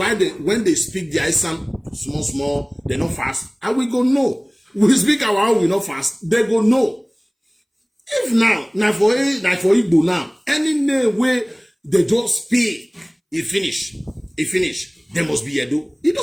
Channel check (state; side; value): identical; both; correlation 1.00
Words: when they speak the Esan small, they not fast. And we go no. We speak our own, we not fast. They go no. If now for Igbo now, any name where they just speak, it finish. There must be Edo. It